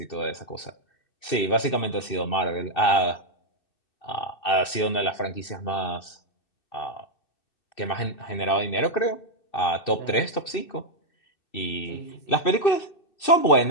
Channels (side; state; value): right; late; 2.6 ms